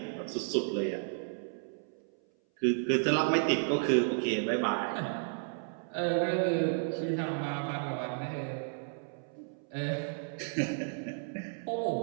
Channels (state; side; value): silent; left; 56 dB below the other